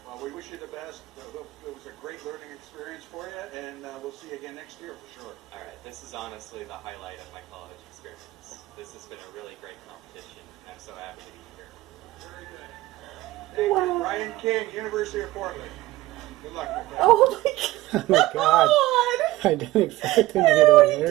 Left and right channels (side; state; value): left; quieter; 17.4 dB